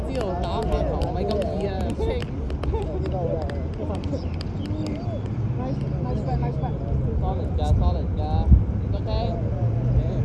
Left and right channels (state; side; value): identical; both; correlation 1.00